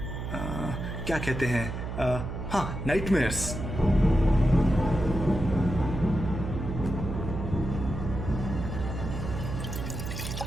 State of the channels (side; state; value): right; noise; hum, 6 dB below the sound